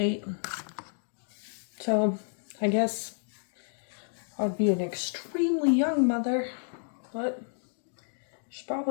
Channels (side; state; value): right; silent; digital silence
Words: So, I guess I'd be an extremely young mother, but she's